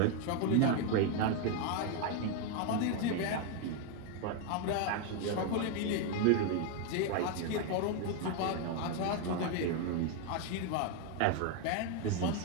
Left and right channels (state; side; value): different; both; correlation 0.01